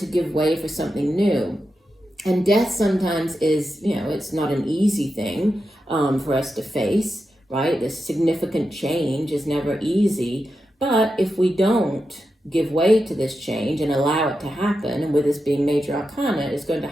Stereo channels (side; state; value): both; normal; correlation 0.89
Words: give way for something new. And death sometimes is, it's not an easy thing for us to face, right? This significant change is never easy. But if we don't give way to this change and allow it to happen. And with this being major arcana, it's going to